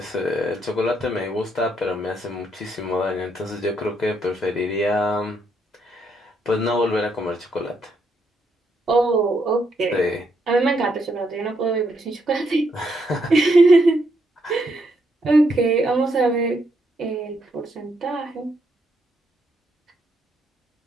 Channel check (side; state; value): both; normal; correlation 0.76